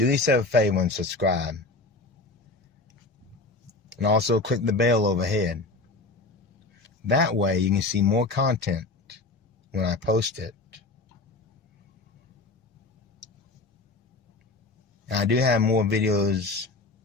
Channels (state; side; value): quieter; right; 3.3 dB